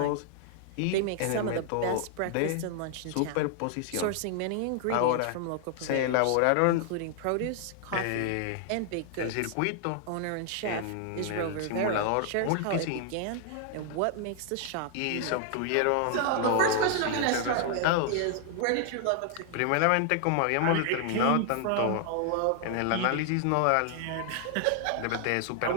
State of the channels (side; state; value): both; different; correlation 0.00